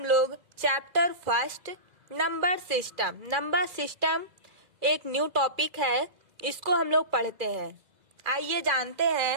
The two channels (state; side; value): late; left; 2.0 ms